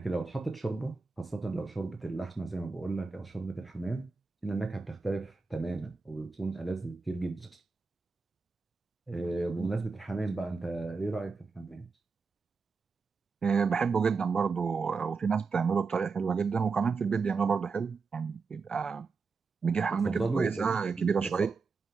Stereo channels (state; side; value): quieter; left; 4.6 dB